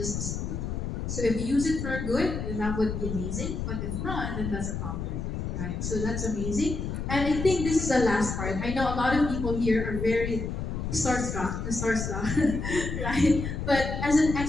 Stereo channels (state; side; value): noise; left; rumble, 4 dB below the sound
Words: a tool. So if you use it for good, then that would be amazing. But if not, then that's a problem, right? So that's amazing. And I think this is the last part. I know a lot of people here are very starstruck, right? But as an